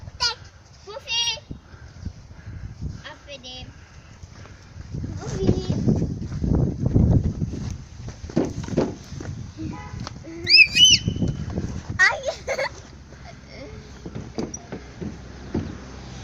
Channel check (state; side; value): identical; both; correlation 1.00